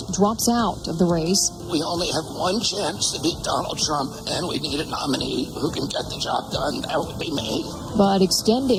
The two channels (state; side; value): identical; both; correlation 1.00